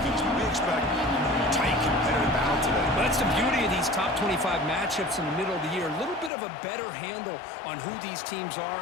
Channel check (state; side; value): drops out; right; at 6.3 s